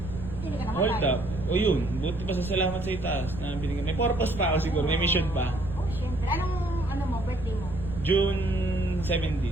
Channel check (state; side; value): noise; right; rumble, 10 dB below the sound